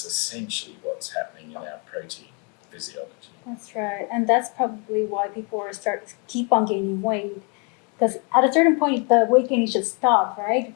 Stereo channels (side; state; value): right; quieter; 34.8 dB